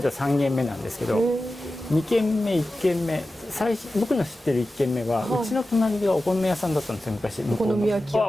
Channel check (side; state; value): both; normal; correlation 0.94